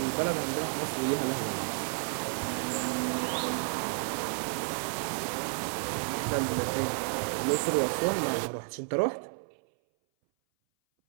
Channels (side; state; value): left; silent; 57 dB below the other